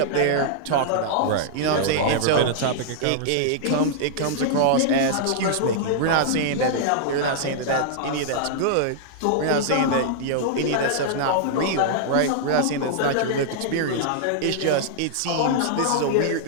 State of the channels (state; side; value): different; both; correlation -0.01